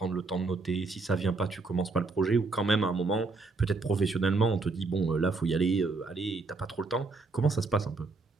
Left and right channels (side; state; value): left; quieter; 3.8 dB